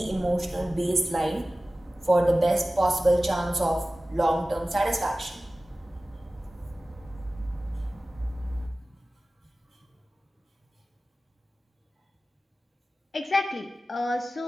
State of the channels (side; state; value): both; normal; correlation 0.96